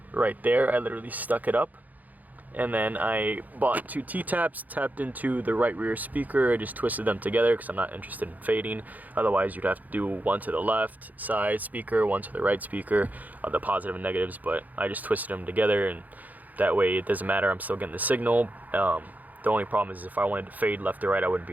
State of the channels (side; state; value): left; late; 0.080 ms